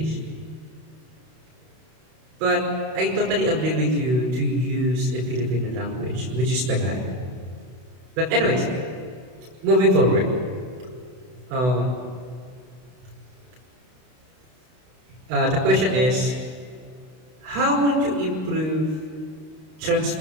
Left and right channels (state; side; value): late; left; 32 ms